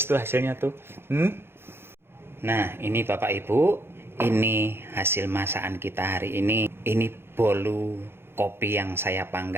tuh hasilnya tuh. Nah, ini Bapak Ibu, ini hasil masakan kita hari ini. Ini bolu kopi yang saya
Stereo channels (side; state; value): left; late; 0.11 ms